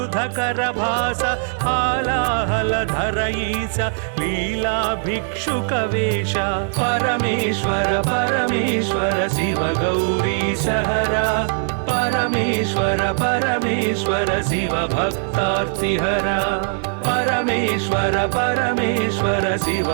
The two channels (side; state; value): left; silent; digital silence